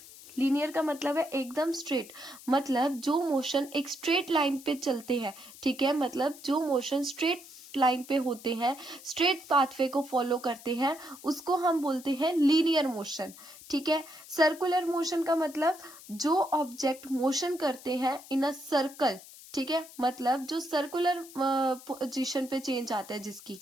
लीनियर का मतलब है एकदम स्ट्रेट. मतलब जो मोशन एक स्ट्रेट लाइन पे चलते हैं. ठीक है. मतलब जो मोशन स्ट्रेट लाइन पे होते हैं, स्ट्रेट पाथवे को फॉलो करते हैं, उसको हम बोलते हैं लीनियर मोशन. ठीक है. सर्कुलर मोशन का मतलब जो ऑब्जेक्ट मोशन करते हैं इन अ सर्कल. ठीक है. मतलब जो सर्कुलर पोजीशन पे चेंज आता है जिसकी,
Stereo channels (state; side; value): noise; left; hiss, 18 dB below the sound